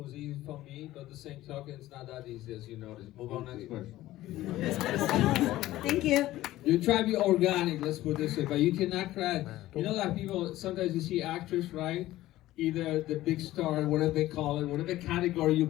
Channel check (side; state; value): right; quieter; 15.7 dB